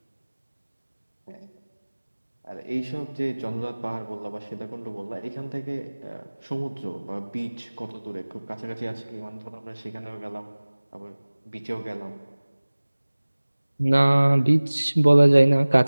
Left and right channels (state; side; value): inverted; both; correlation -1.00